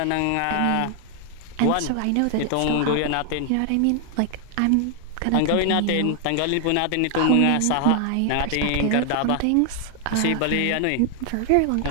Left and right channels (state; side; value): different; both; correlation 0.00